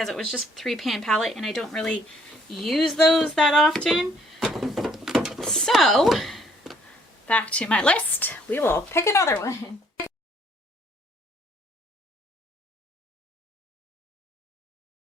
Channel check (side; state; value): both; normal; correlation 0.64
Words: it was just 3-pan palette and I don't really use those that often. So, back to my list. We will pick another one.